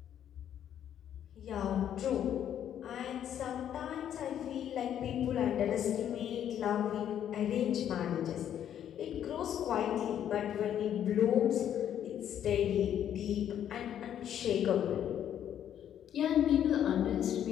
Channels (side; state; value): right; quieter; 10.0 dB